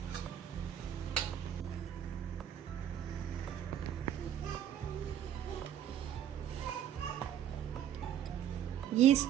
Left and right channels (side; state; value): left; quieter; 10.2 dB